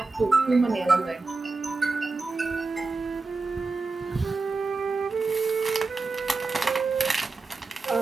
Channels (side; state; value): left; quieter; 3.8 dB